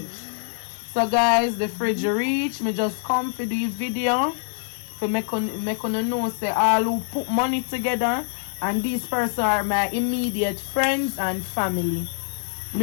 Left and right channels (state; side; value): silent; right; digital silence